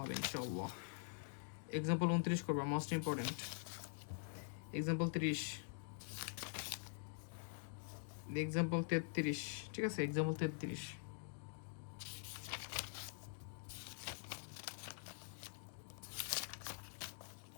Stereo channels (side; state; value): right; silent; digital silence